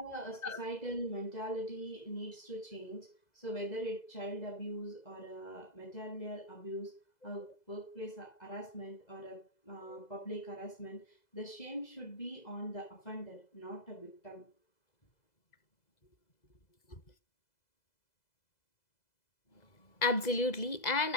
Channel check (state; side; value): late; right; 2.0 ms